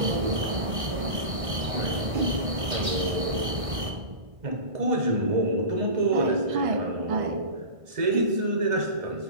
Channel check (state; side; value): late; left; 1.5 ms